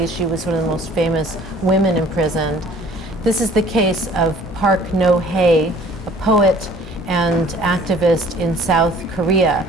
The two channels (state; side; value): normal; both; correlation 0.53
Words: She was one of the most famous women imprisoned. This is the case of Park No-hae, a poet and activist in South Korea,